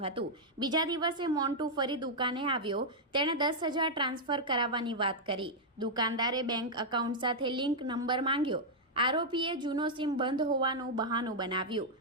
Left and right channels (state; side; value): normal; both; correlation -0.05